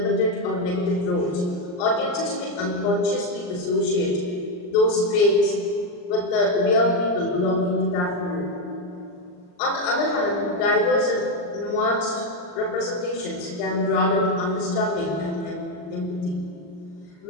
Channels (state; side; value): late; right; 39 ms